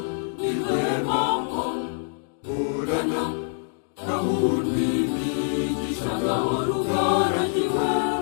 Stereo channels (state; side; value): silent; right; digital silence